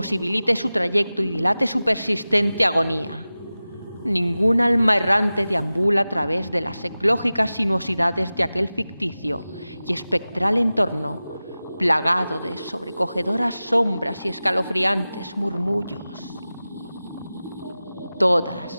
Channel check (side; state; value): both; inverted; correlation -0.96